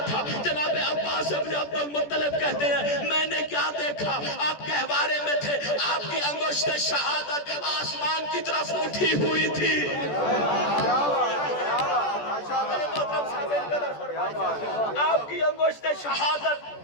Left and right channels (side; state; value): right; late; 14 ms